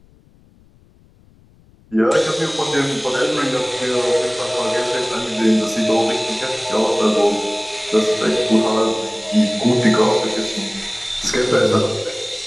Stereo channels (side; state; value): left; noise; rumble, 30 dB below the sound